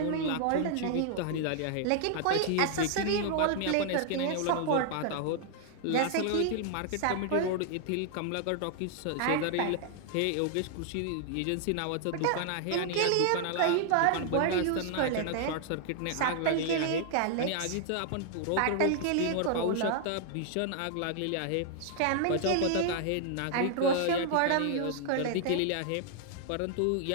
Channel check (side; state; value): both; different; correlation 0.00